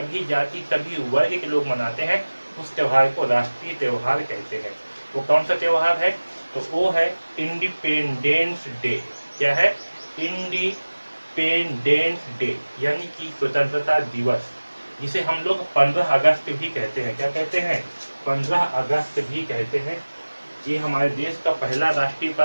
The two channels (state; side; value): inverted; both; correlation -1.00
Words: जाति, सभी वर्ग के लोग मनाते हैं, उस त्योहार को राष्ट्रीय त्योहार कहते हैं। वो कौन सा त्योहार है? तो वो है इंडिपेंडेंस डे। क्या है? इंडिपेंडेंस डे यानी कि स्वतंत्रता दिवस, जिसे हम लोग 15 अगस्त भी कहते हैं। क्या कहते हैं? 15 अगस्त भी कहते हैं। ये हमारे देश का पहला राष्ट्रीय